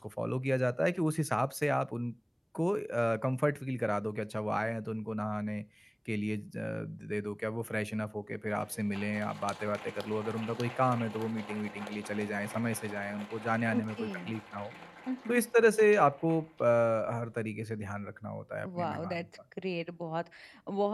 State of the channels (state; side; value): identical; both; correlation 1.00